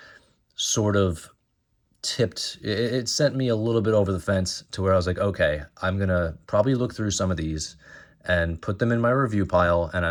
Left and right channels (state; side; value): identical; both; correlation 1.00